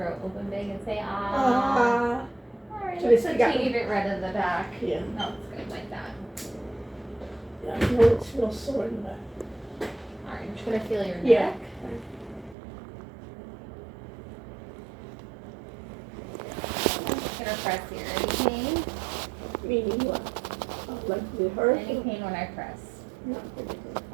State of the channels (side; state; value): left; drops out; at 12.6 s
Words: Open big and say ah. Alright, So looks they like got- you need it red in the back. Yeah. No, it's good like that. Yeah, I know it's real sore in the back. Alright, I'm just gonna feel your Yeah. neck. I'm gonna press here. Any pain? Meaning what? Like the hurt? Any pain when I press? Not particularly.